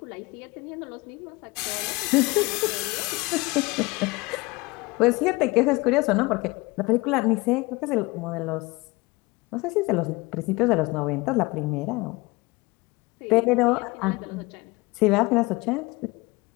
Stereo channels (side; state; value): right; quieter; 23.5 dB